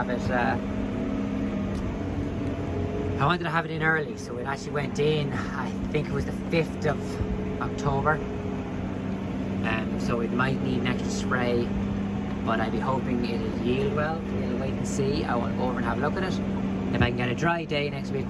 it in early, so it actually went in, I think it was the 5th of October. So it might need an extra spray, but I'd be hoping it'll yield well. We'll wait and see. I want to go over and have a look at it. If I can get a dry day next week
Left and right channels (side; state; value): both; identical; correlation 1.00